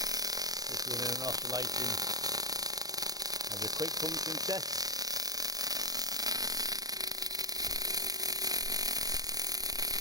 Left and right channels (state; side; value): late; left; 0.18 ms